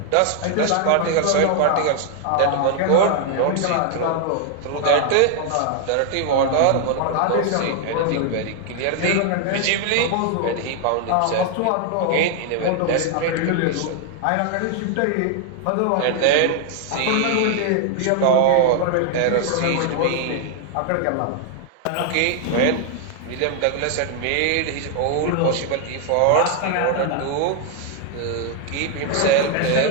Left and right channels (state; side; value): different; both; correlation 0.00